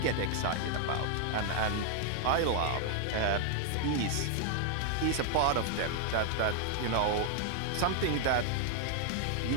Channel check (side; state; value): both; different; correlation 0.00